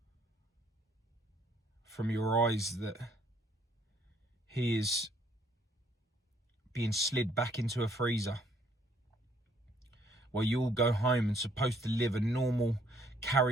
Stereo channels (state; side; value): normal; both; correlation 0.65